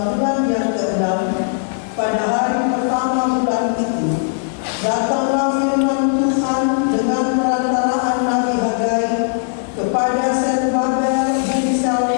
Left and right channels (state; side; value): silent; right; digital silence